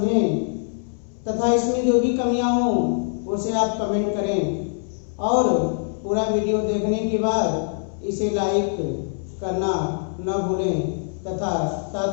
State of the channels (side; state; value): right; silent; digital silence